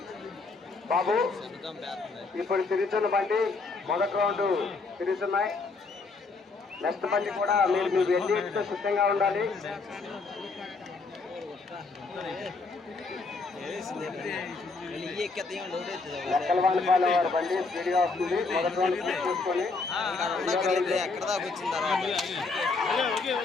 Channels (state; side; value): quieter; right; 4.0 dB